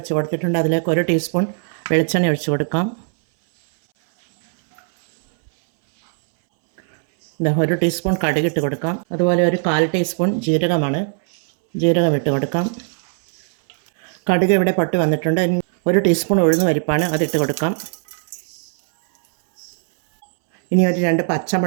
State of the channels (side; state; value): left; silent; 66 dB below the other